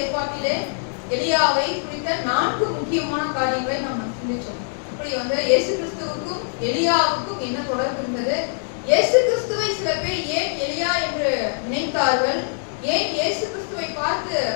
எலியாவை குறித்த 4 முக்கியமான காரியங்களை நாம் சிந்திச்சோம். இப்படி இயேசு கிறிஸ்துவுக்கும் எலியாவுக்கும் என்ன தொடர்பு இருந்தது? இயேசு கிறிஸ்துவை சில பேர் ஏன் எலியா என்று நினைத்தார்கள்? ஏன் இயேசு கிறிஸ்துவை பார்த்து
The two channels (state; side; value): silent; right; digital silence